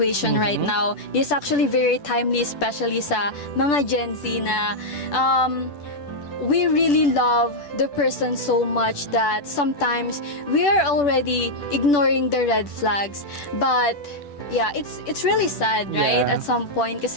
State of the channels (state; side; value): late; right; 10 ms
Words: right now. This is actually very timely, especially sa mga Gen Z na we really love the person so much that sometimes we are already ignoring the red flags. But yeah, it's really sad, right? Yeah. At some point,